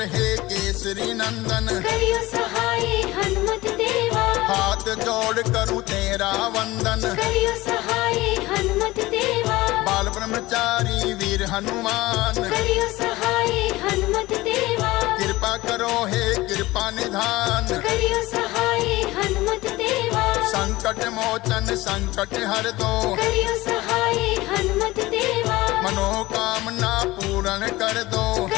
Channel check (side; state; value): right; quieter; 19.1 dB